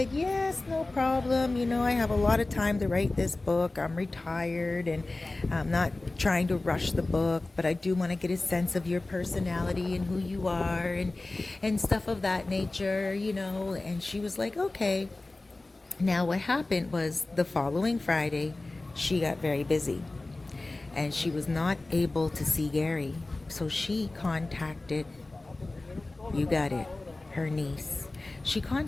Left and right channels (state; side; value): quieter; right; 3.0 dB